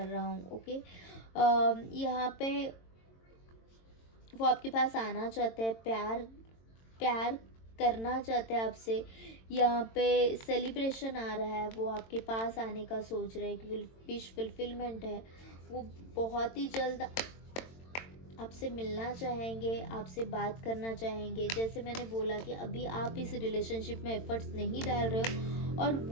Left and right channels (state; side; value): late; right; 22 ms